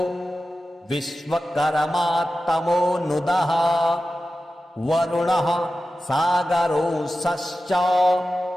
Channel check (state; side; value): normal; both; correlation 0.94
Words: विश्वकर्मा तमोनुदः वरुणः सागरोऽसश्च